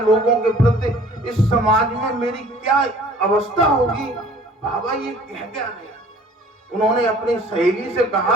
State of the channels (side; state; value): both; normal; correlation 0.52